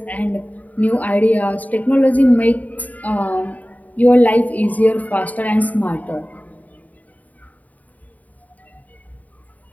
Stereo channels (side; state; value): right; late; 0.074 ms